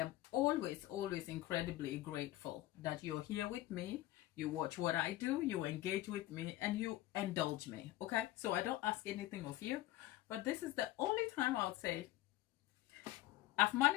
always, always incredibly grateful that you're here with me. You watch what I do, you engage with me, and you indulge me, okay? So I don't ask anything of you. But this is the only time I'll say, I've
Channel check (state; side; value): quieter; right; 15.8 dB